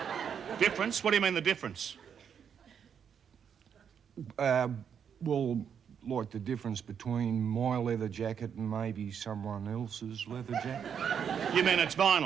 Difference? What do you mean the difference? Well, like the difference between my leather jacket and maybe someone else's leather jacket. You mean it's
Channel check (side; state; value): left; quieter; 7.7 dB